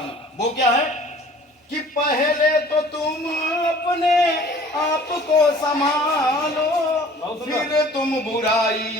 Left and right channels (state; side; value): normal; both; correlation 0.50